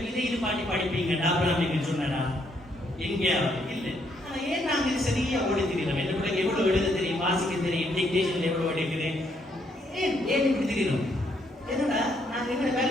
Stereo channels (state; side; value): normal; both; correlation 0.72